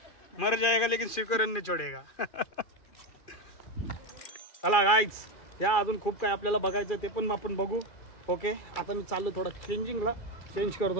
मर जाएगा लेकिन सिकोरन नहीं छोड़ेगा. चला गाईज या अजून खूप काय आपल्याला बघायचं ते पण आपण बघू. ओके आता मी चाललो थोडा चेंजिंगला. चेंज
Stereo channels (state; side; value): late; right; 2.4 ms